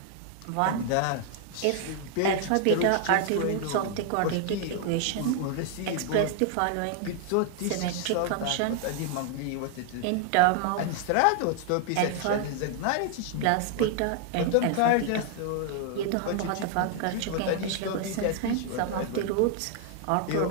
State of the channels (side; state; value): both; different; correlation 0.00